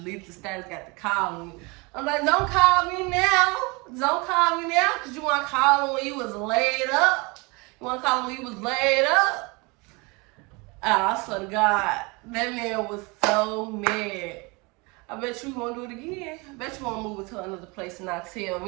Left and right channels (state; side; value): quieter; left; 27.5 dB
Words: the status, got to call me. I'm like, don't call me now. Don't call me now, because you want to call him when you was laid up. You want to call him when he was laid up? I swear to God, that man was so mad. I bet you won't do it again. I bet you won't move it to another place and not tell